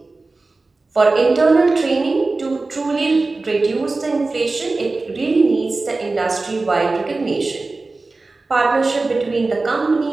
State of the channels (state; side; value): quieter; left; 3.5 dB